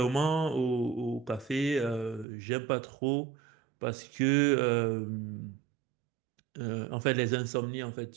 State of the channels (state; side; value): drops out; left; at 2.2 s